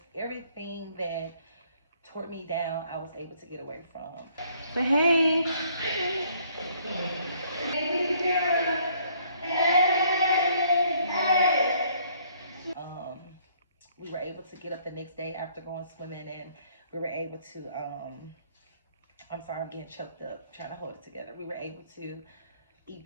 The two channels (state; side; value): inverted; both; correlation -0.63